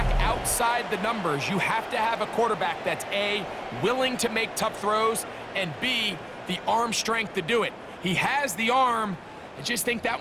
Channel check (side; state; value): both; identical; correlation 1.00